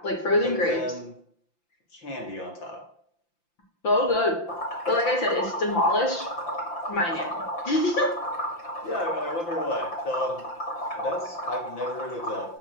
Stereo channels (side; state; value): right; late; 5.8 ms